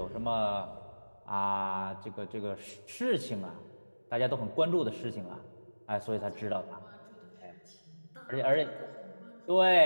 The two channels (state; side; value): inverted; both; correlation -1.00